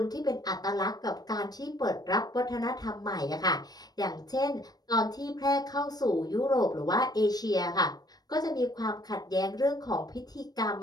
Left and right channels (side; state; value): right; late; 0.19 ms